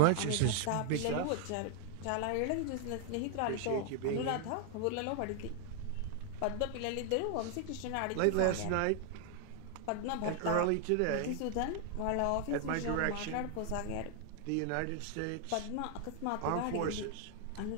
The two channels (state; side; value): different; both; correlation 0.00